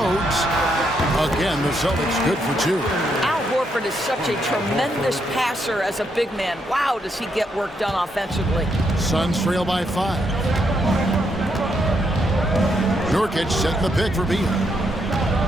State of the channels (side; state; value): both; normal; correlation 0.77